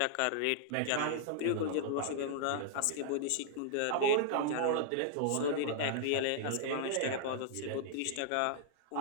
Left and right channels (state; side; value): different; both; correlation -0.01